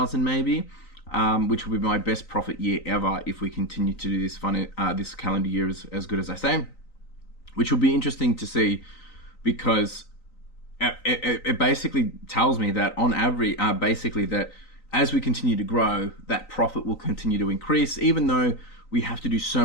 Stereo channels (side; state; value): right; late; 3.9 ms